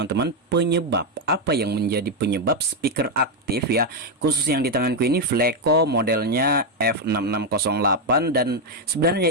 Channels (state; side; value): normal; both; correlation 0.03